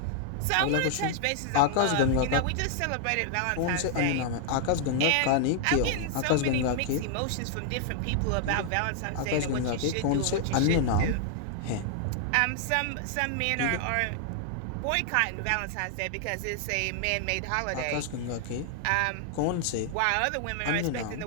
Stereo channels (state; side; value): different; both; correlation 0.00